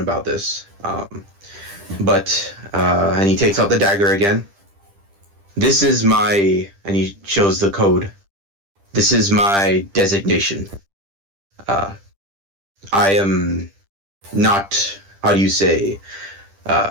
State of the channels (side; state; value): left; late; 10 ms